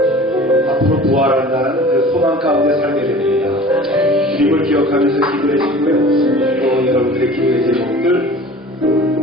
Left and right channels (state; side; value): normal; both; correlation 0.43